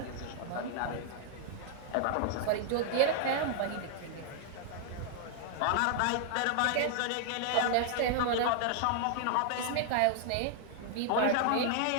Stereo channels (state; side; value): different; both; correlation 0.00